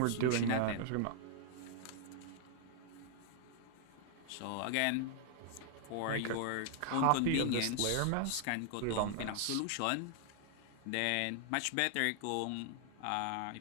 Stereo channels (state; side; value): different; both; correlation 0.00